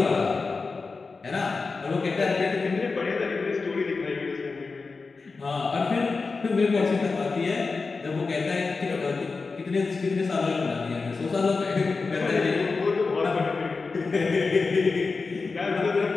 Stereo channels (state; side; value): quieter; right; 4.3 dB